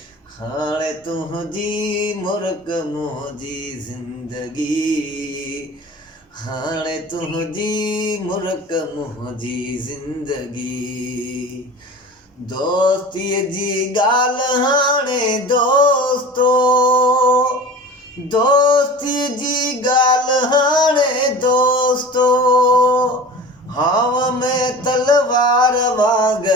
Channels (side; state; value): both; normal; correlation 0.37